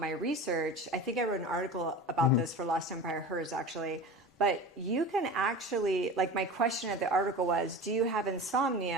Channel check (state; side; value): normal; both; correlation 0.32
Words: my research, I think I wrote an article about this for Lost Empire Hers, actually. But you can actually, like my question of the article was, do you have